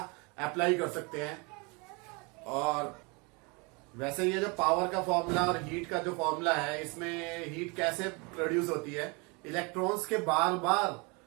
अप्लाई कर सकते हैं। और वैसे ये जो पावर का फॉर्मूला और हीट का जो फॉर्मूला है, इसमें हीट कैसे प्रोड्यूस होती है, इलेक्ट्रॉन्स के बार बार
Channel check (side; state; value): left; quieter; 29.7 dB